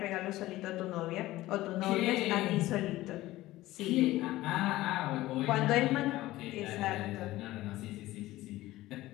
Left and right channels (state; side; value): quieter; right; 16.9 dB